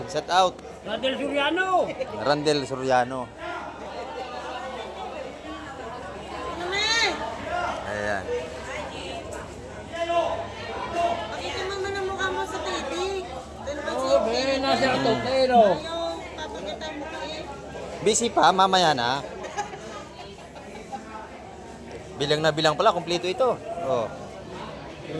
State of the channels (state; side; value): identical; both; correlation 1.00